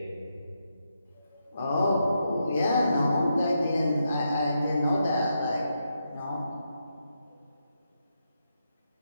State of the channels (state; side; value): inverted; both; correlation -0.83